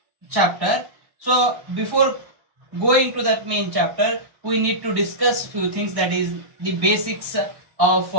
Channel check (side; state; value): left; late; 1.1 ms